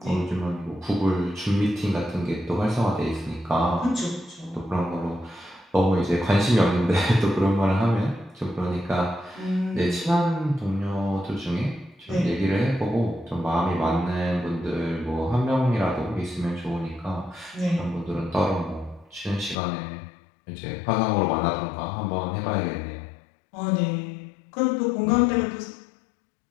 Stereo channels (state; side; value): drops out; right; at 19.6 s